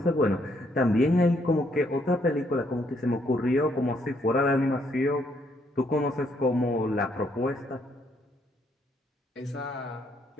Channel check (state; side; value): normal; both; correlation 0.71